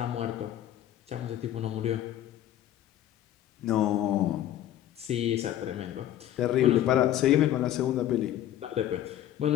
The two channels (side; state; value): right; quieter; 12.1 dB